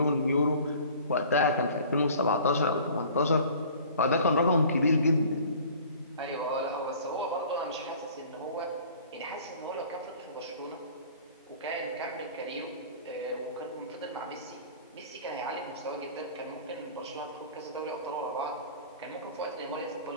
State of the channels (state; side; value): inverted; both; correlation -0.47